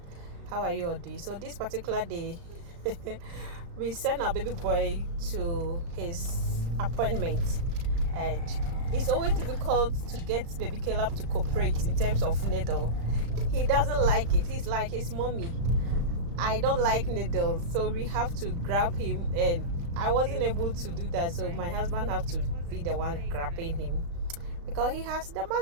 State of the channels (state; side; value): late; left; 35 ms